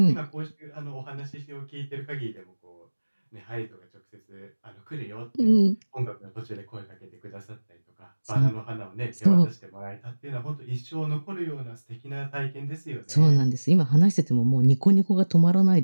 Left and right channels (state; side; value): inverted; both; correlation -1.00